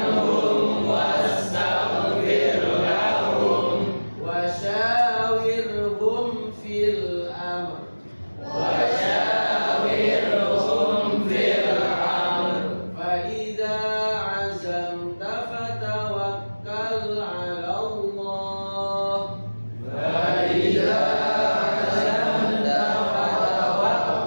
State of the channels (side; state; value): both; inverted; correlation -1.00